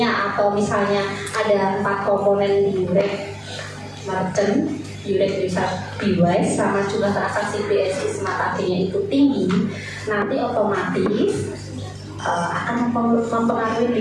atau misalnya ada 4 komponen di Yurek merchant, Yurek user device, sama jumlah transaksi BSI Smart AG-nya itu tinggi, nanti otomatis akan mempengaruhi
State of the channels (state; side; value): identical; both; correlation 1.00